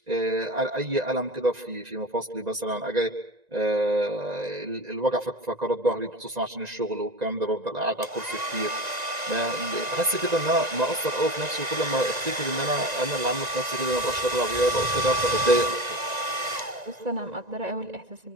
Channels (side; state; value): left; late; 1.9 ms